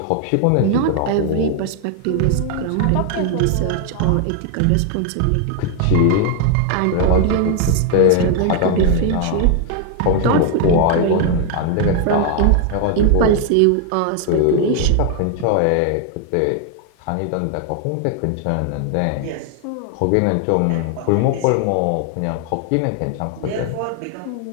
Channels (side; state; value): both; different; correlation 0.00